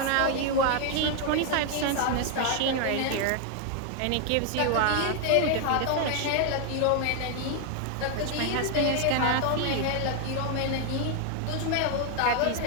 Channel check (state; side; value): different; both; correlation 0.00